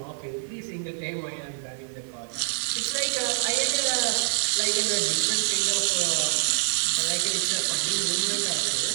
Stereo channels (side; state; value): left; silent; digital silence